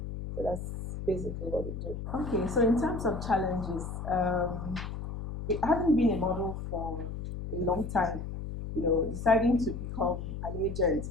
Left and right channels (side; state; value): left; noise; hum, 7 dB below the sound